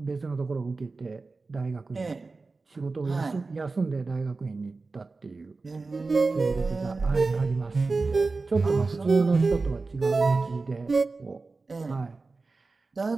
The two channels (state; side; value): quieter; left; 3.8 dB